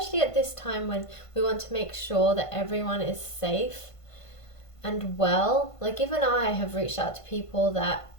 at this time when we want to make sure that everyone is safe and well. Like, even I have reached out to people that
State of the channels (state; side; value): late; right; 1.5 ms